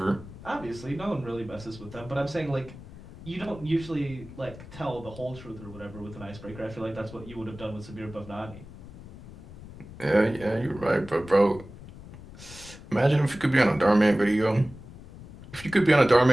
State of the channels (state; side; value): noise; left; rumble, 16 dB below the sound